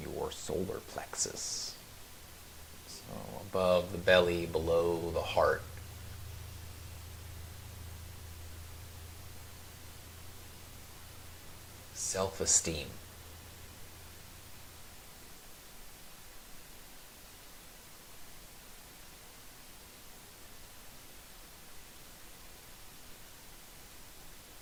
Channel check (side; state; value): both; identical; correlation 1.00